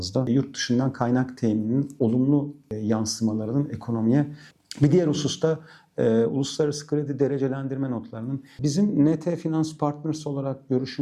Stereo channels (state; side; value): identical; both; correlation 1.00